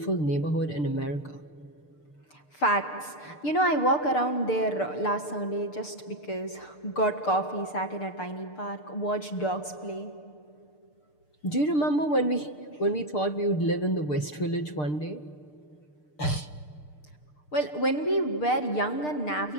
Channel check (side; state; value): right; late; 6.7 ms